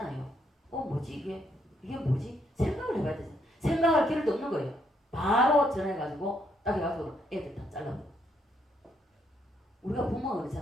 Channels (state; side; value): normal; both; correlation 0.74